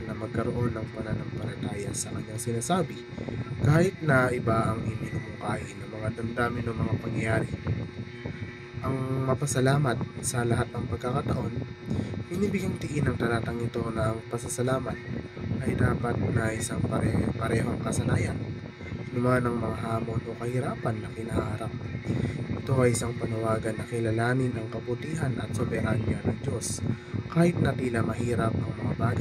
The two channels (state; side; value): identical; both; correlation 1.00